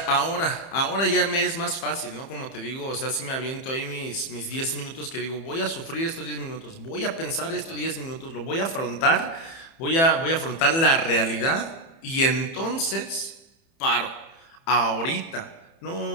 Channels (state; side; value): late; right; 30 ms